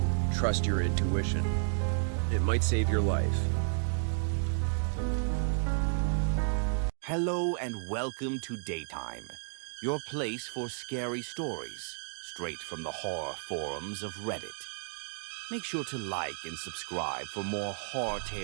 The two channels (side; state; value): left; silent; digital silence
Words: Trust your intuition. It might save your life. Hello and welcome to Daytime, your place for scary stories, straight from the horror forums of Reddit. Make sure to like and subscribe for more horror